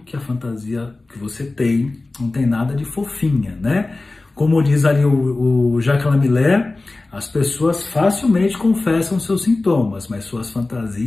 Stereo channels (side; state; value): right; quieter; 3.2 dB